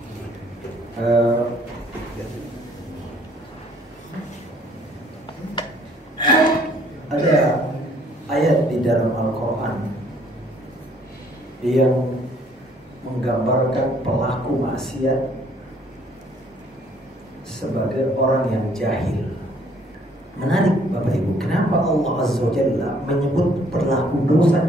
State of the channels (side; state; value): both; normal; correlation 0.62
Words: Ada ayat di dalam Al-Quran yang menggambarkan pelaku maksiat sebagai orang yang jahil. Menarik Bapak Ibu, kenapa Allah Azza wa Jalla menyebut pelaku dosa